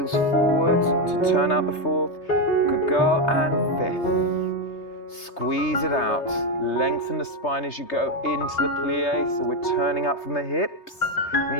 forward to turn out the fourth. Good girl. And fifth. Squeeze it out. Lengthen the spine as you go into the plie. So we're turning up from the hips.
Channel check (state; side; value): late; right; 3.3 ms